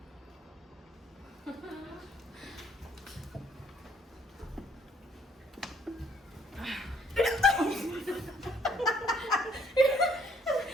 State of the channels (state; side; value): normal; both; correlation 0.63